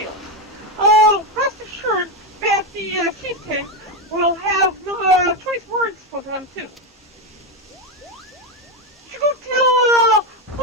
Rest assured that the chieftain will have choice words for them too. You should go tell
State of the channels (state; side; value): normal; both; correlation 0.10